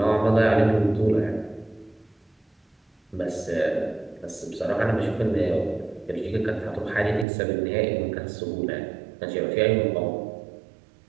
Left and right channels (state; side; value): drops out; left; at 7.2 s